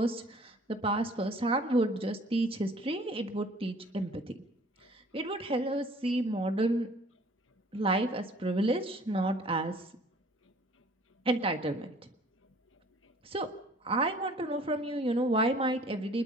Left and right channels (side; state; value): both; normal; correlation 0.53